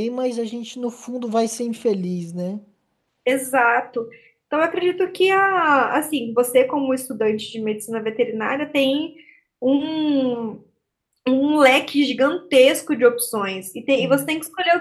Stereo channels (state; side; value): identical; both; correlation 1.00